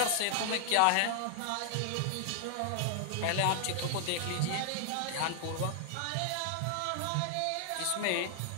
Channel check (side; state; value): both; different; correlation 0.00